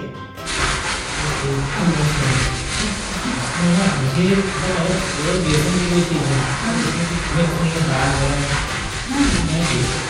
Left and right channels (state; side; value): identical; both; correlation 1.00